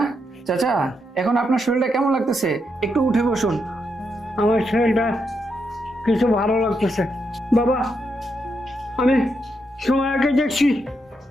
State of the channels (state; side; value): normal; both; correlation 0.81